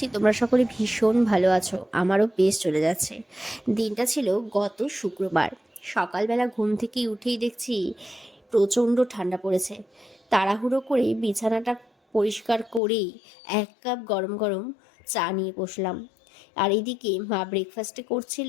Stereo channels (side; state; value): right; drops out; at 12.8 s